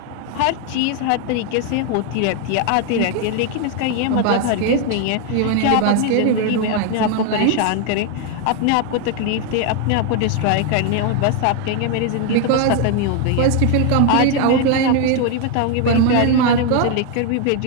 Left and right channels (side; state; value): both; different; correlation 0.01